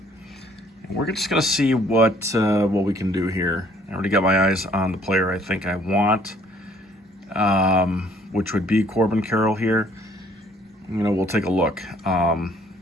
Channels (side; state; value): both; normal; correlation 0.61